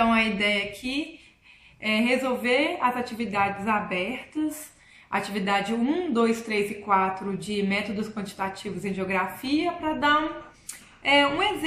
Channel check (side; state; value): both; identical; correlation 1.00